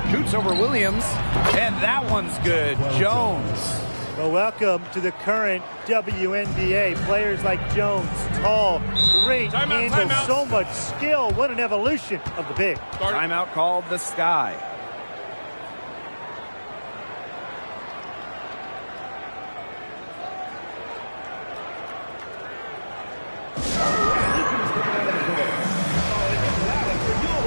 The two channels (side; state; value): both; inverted; correlation -1.00